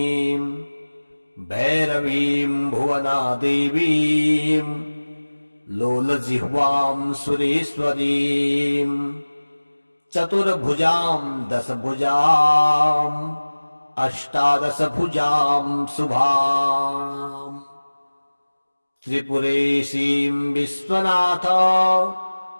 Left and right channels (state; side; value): inverted; both; correlation -1.00